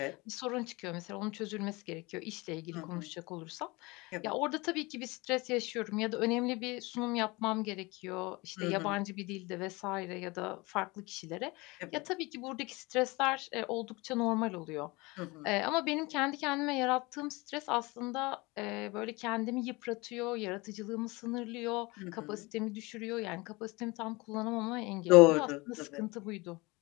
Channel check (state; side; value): quieter; right; 24.2 dB